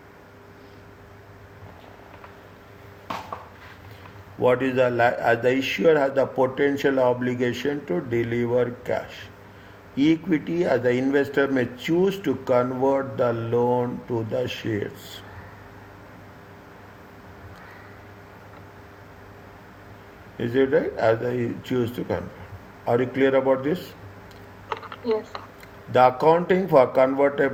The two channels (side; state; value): both; identical; correlation 1.00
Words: What is as the issuer has the potential obligation to deliver cash. Equity, as the investor may choose to convert the loan to the shares. Is it right? As I choose to convert. Are you clear about this? Yes. The accounting for